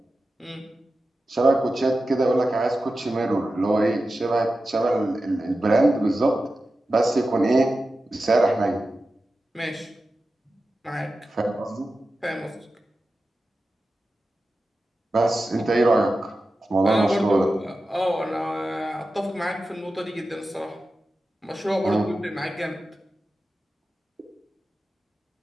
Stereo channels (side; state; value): both; normal; correlation 0.93